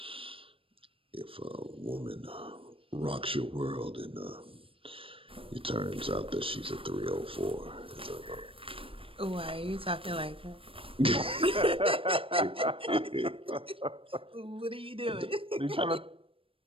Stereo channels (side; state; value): left; late; 0.26 ms